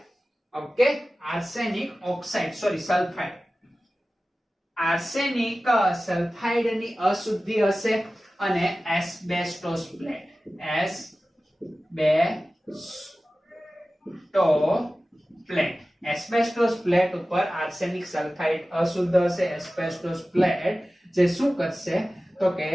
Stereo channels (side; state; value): both; normal; correlation 0.96